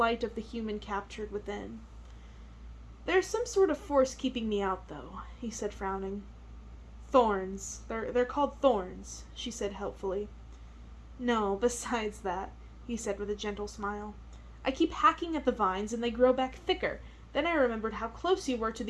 of the human captured within. "There's some sort of force keeping me out, though," he said, frowning. "Thorns. They're called thorns," she said helpfully. "No, besides that," he said with a gentle smile. "I keep hacking at the vines and they grow back thicker. Then I remembered how close you were to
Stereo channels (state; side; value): identical; both; correlation 1.00